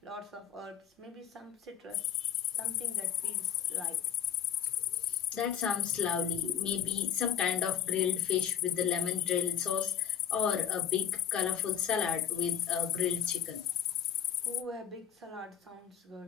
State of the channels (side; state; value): right; quieter; 9.1 dB